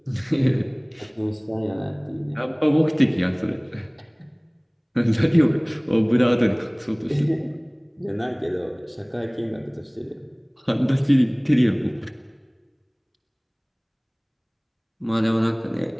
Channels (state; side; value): identical; both; correlation 1.00